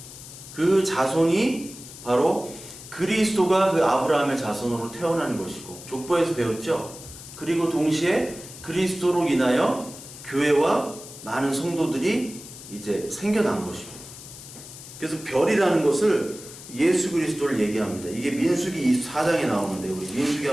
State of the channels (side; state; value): left; noise; hiss, 15 dB below the sound